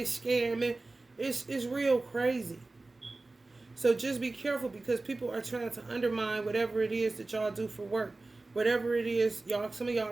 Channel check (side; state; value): left; quieter; 3.2 dB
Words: scamming. It's real crazy. So just be careful because people are trying to undermine whatever it is that y'all do for work. Whatever it is, y'all, some of y'all